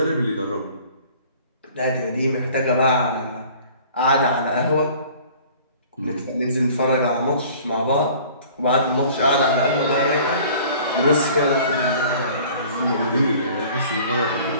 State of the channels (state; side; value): inverted; both; correlation -0.49